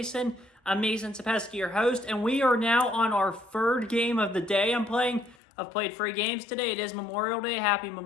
I'm Mason Sapesky, your host, and we are now on our third game of the day I'm playing. I've played 3 games today. It is Memorial Day. Happy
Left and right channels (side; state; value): right; drops out; at 5.4 s